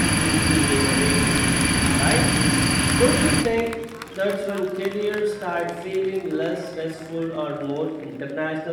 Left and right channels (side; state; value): both; identical; correlation 1.00